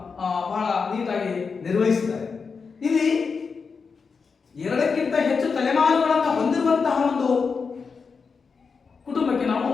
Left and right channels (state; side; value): quieter; right; 5.2 dB